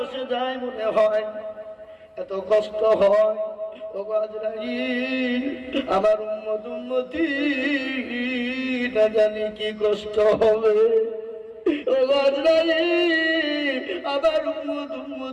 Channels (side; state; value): both; identical; correlation 1.00